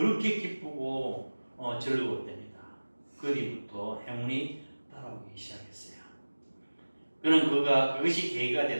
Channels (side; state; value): both; inverted; correlation -1.00